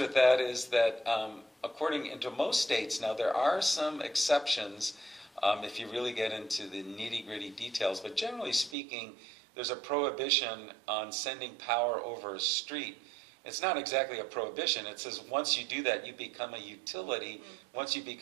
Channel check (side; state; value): left; drops out; at 8.8 s